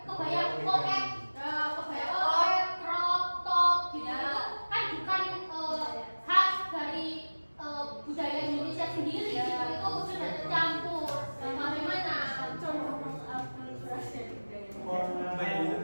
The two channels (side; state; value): both; inverted; correlation -1.00